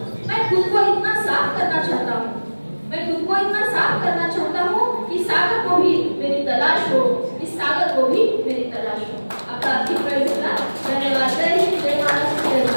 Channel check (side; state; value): both; inverted; correlation -1.00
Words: मैं खुद को इतना साफ करना